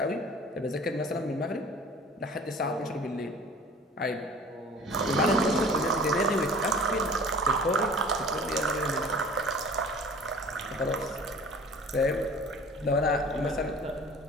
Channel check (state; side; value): normal; both; correlation 0.45